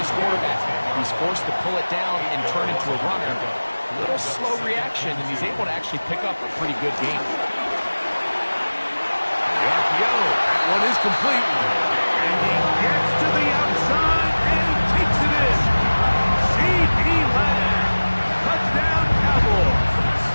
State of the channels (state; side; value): inverted; both; correlation -1.00